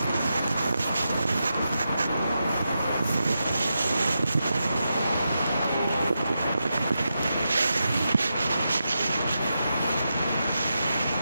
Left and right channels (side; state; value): both; inverted; correlation -0.88